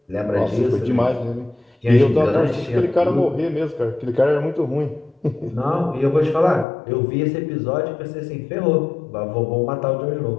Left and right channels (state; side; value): drops out; right; at 6.7 s